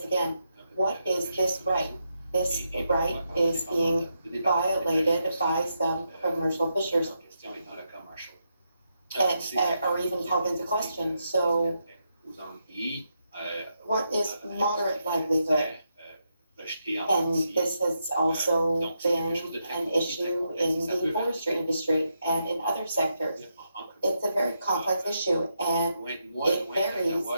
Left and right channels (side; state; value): both; inverted; correlation -0.83